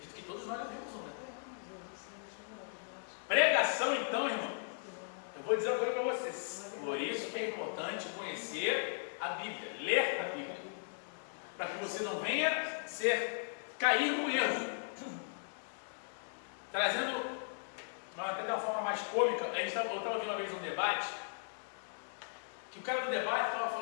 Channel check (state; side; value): silent; right; digital silence